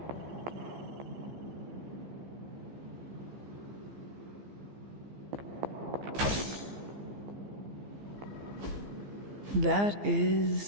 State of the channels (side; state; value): left; late; 15 ms